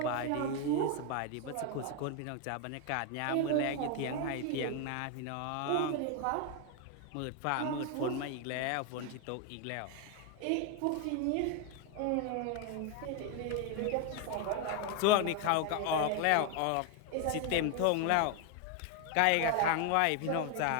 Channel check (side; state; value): both; different; correlation 0.01